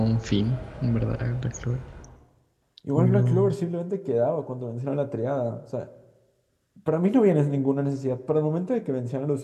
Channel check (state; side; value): identical; both; correlation 1.00